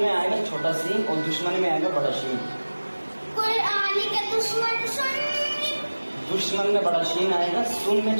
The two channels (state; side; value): inverted; both; correlation -1.00